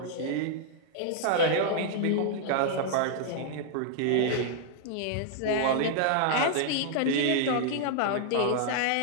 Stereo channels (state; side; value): different; both; correlation -0.01